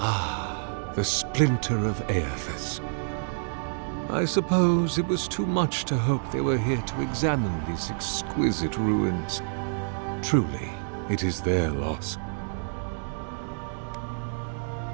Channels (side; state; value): left; silent; digital silence